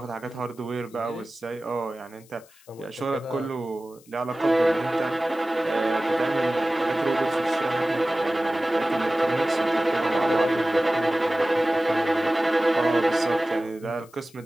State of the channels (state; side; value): noise; left; hiss, 27 dB below the sound